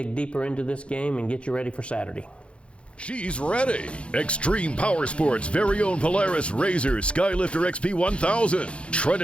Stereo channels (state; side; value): late; right; 0.059 ms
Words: deeper into this game and get you ready for Saturday. She's ready. Extreme Power Sports' very own Polaris RZR Skylifter XP1000,